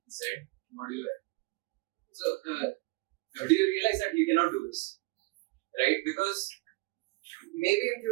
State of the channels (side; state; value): left; quieter; 24.4 dB